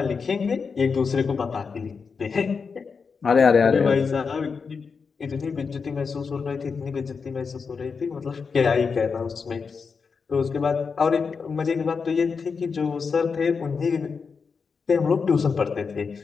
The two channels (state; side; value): quieter; right; 5.4 dB